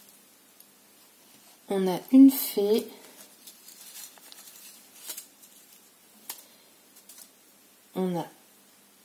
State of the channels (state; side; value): identical; both; correlation 1.00